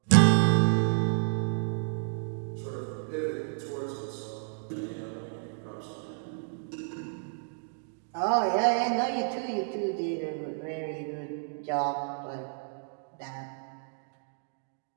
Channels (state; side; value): silent; left; digital silence